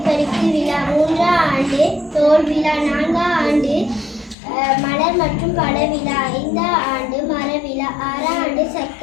பரிசு விழா, மூன்றாம் ஆண்டு தோல் விழா, நான்காம் ஆண்டு மலர் மற்றும் பழ விழா, ஐந்தாம் ஆண்டு மர விழா, ஆறாம் ஆண்டு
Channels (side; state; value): right; drops out; at 4.4 s